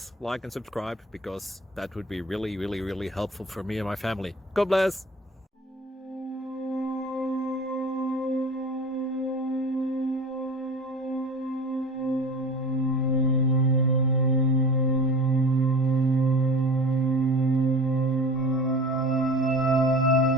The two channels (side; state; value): both; normal; correlation 0.38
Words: like and subscribe, because that would be really helpful for me and my family. God bless!